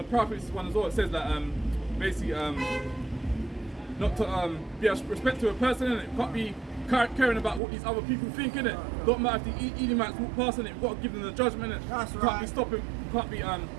prophets one as well, it says that basically not to be a respect to a person in it. You can't be caring about what these other people think in it. Don't matter if the Edomites walk past in it. You've got to give them the judgment in it. That's you right. can't be stopping. You can't be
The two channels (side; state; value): left; drops out; at 7.6 s